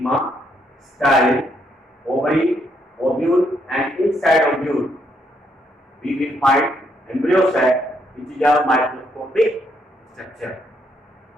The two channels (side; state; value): both; normal; correlation 0.74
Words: style, ovary, ovule, and inside ovule we will find embryo sac, which is a microscopic structure.